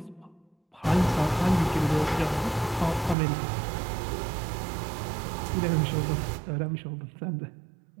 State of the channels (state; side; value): drops out; left; at 3.2 s